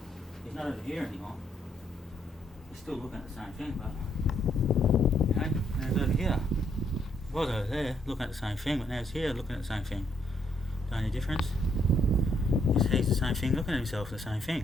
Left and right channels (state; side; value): normal; both; correlation 0.72